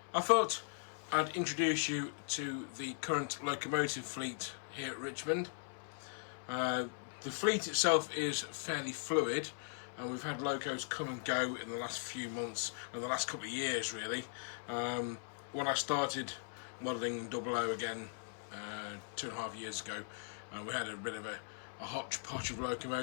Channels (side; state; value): right; silent; 52 dB below the other